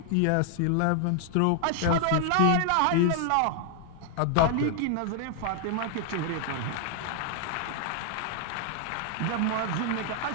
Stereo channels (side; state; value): both; different; correlation 0.00